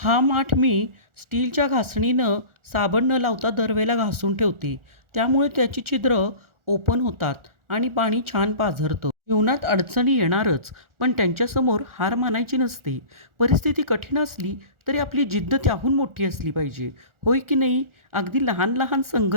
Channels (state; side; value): late; left; 1.4 ms